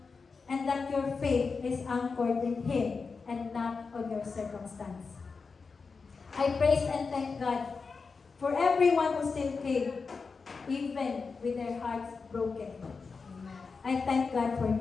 And that your faith is anchored in Him and not on your circumstance. I praise and thank God for everyone who still came, even with their hearts broken. I thank God for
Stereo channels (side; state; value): right; quieter; 4.8 dB